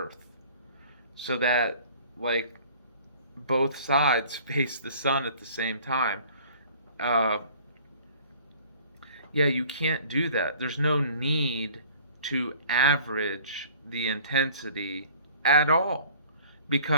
so that, like, both sides face the sun at the same time. Uh, yeah, you can't do that. There's no need to average the intensity at all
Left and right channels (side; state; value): both; inverted; correlation -0.50